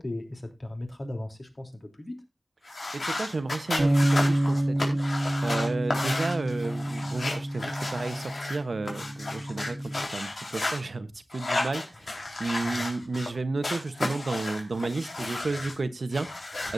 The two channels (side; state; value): both; normal; correlation 0.96